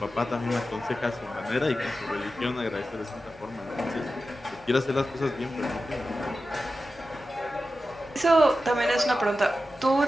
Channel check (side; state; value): both; normal; correlation 0.92